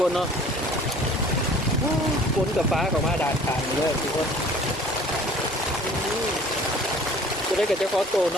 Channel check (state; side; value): normal; both; correlation 0.50